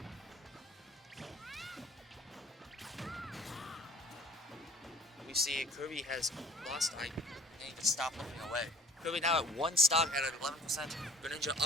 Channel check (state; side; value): normal; both; correlation 0.51